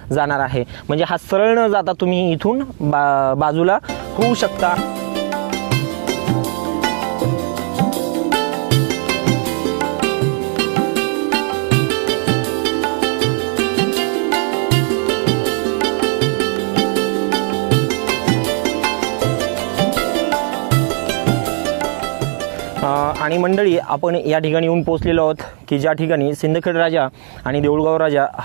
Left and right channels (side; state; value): left; quieter; 38.3 dB